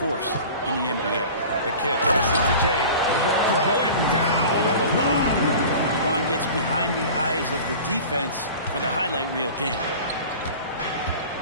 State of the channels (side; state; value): both; inverted; correlation -0.39